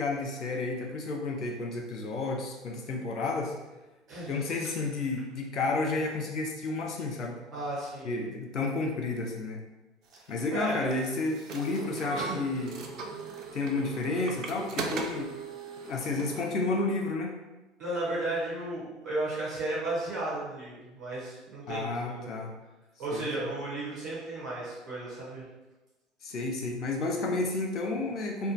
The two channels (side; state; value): both; normal; correlation 0.36